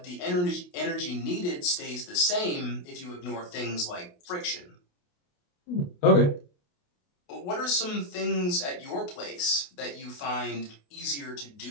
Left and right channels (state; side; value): late; right; 28 ms